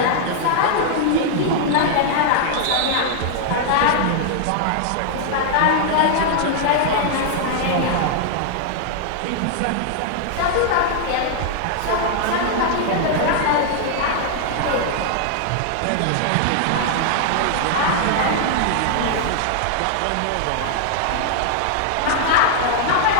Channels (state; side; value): different; both; correlation -0.01